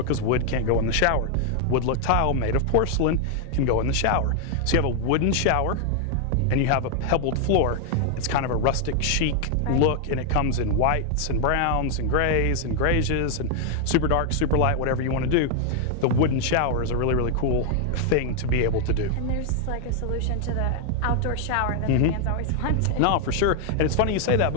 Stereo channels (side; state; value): both; different; correlation 0.00